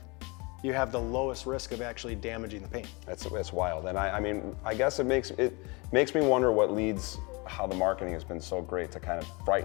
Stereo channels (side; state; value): right; quieter; 28.1 dB